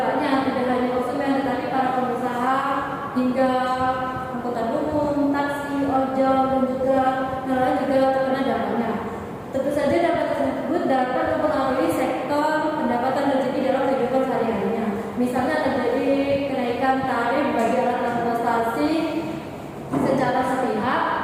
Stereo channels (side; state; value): both; identical; correlation 1.00